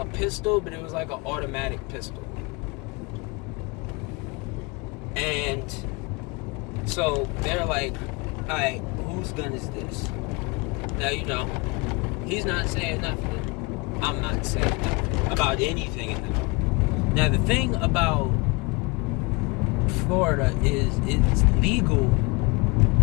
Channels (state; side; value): quieter; right; 27.1 dB